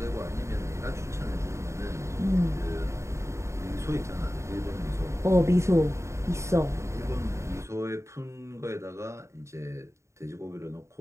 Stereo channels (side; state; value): left; late; 0.14 ms